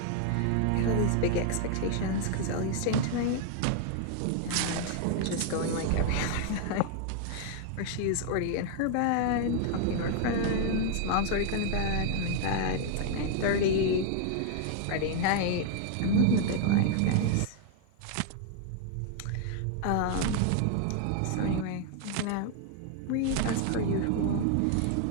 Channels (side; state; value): both; different; correlation 0.00